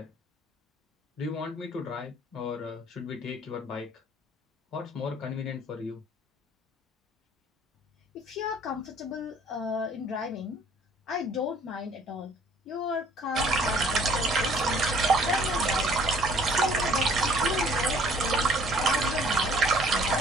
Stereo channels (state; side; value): normal; both; correlation 0.57